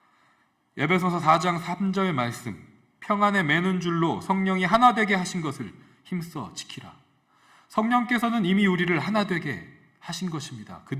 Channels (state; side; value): identical; both; correlation 1.00